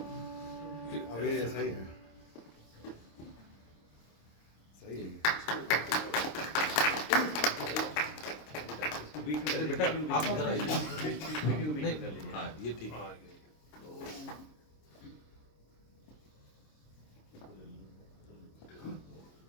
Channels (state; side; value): late; right; 26 ms